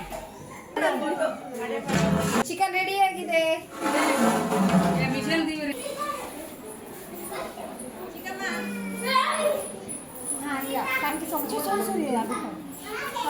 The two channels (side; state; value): both; identical; correlation 1.00